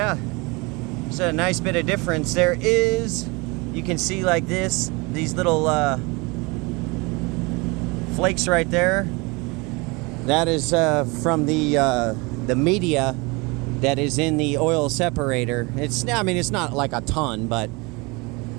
it's a nice bit of difference. There is, you can see like this, these little flakes right there. That is from the media that is in the oil separator. It's not like a ton, but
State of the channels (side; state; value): left; quieter; 26.9 dB